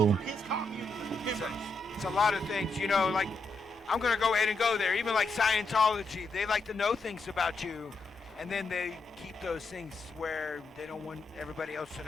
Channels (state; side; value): normal; both; correlation 0.84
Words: It's a lot of things, you know, like, I'm going to go ahead and go there. Even like Scientology, they like to know things about you, and then they keep those things where they don't want everybody else to